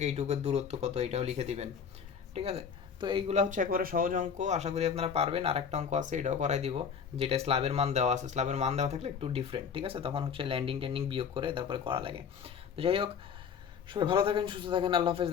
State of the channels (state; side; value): quieter; right; 6.9 dB